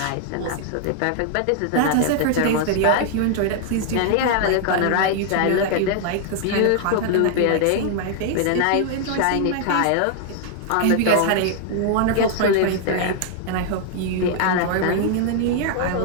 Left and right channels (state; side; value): different; both; correlation 0.00